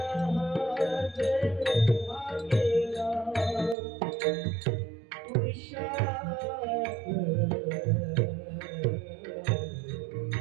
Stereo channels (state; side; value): drops out; left; at 3.8 s